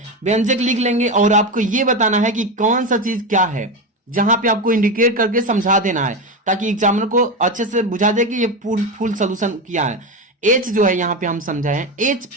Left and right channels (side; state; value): both; normal; correlation 0.17